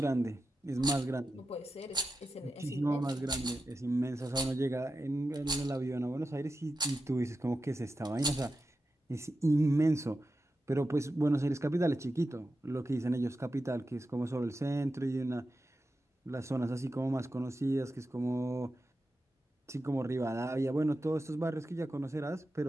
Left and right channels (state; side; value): normal; both; correlation 0.91